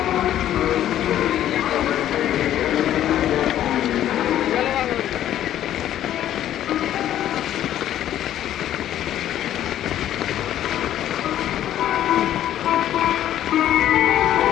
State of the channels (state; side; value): quieter; right; 11.8 dB